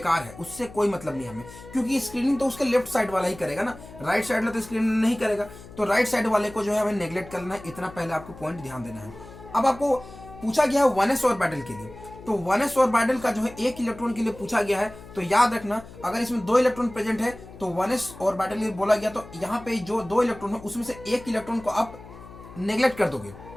है, उससे कोई मतलब नहीं हमें, क्योंकि स्क्रीनिंग तो उसके लेफ्ट साइड वाला ही करेगा ना, राइट साइड वाला तो स्क्रीनिंग नहीं करेगा। तो राइट साइड वाले को जो है हमें नेग्लेक्ट करना है, इतना पहले आपको पॉइंट ध्यान देना है। अब आपको पूछा गया है 1s ऑर्बिटल के लिए, तो 1s ऑर्बिटल का जो है एक इलेक्ट्रॉन के लिए पूछा गया है, तो याद रखना अगर इसमें 2 इलेक्ट्रॉन प्रेजेंट है तो 1s ऑर्बिटल के लिए बोला गया, तो यहाँ पे जो 2 इलेक्ट्रॉन है उसमें से एक इलेक्ट्रॉन को आप नेग्लेक्ट कर दोगे।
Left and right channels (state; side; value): noise; left; hum, 17 dB below the sound